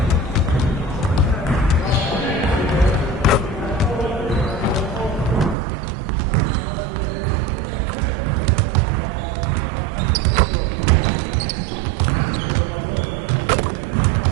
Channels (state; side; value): drops out; left; at 5.6 s